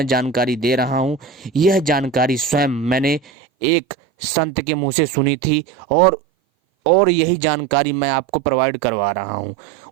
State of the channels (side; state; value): left; drops out; at 3.2 s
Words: जानकारी दे रहा हूँ, यह जानकारी स्वयं मैंने एक संत के मुंह से सुनी थी, और यही जानकारी मैं आपको प्रोवाइड करवा रहा हूँ।